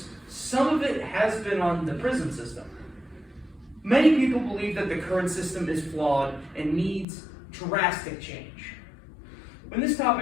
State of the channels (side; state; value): right; drops out; at 7.1 s